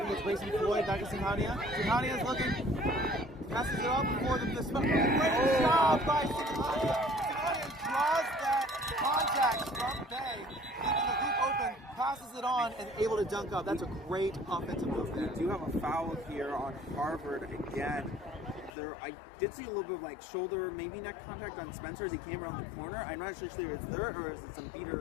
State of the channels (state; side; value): drops out; right; at 18.7 s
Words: It's racing Floyd back to Singhania. Singhania's looking. Passes it off before the great job by Singhania. Singhania draws that contact from Bay, leaving the hoop open, passes it on, and able to dunk up. That's a great offensive move there. We do have a foul here on Harvard again. I did see a little bit of like shoulder, maybe neck contact on Spencer as he came around the corner. I'm not actually sure if it's there or is it some